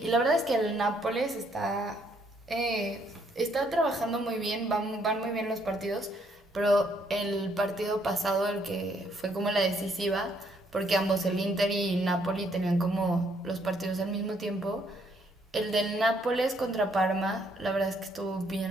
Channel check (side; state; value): both; normal; correlation 0.69